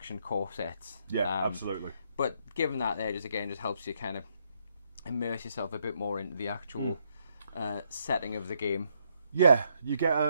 corsets. Yeah, absolutely. But given that there, just helps you kind of immerse yourself a bit more into the actual setting of the game. Yeah, you get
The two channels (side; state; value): both; inverted; correlation -0.74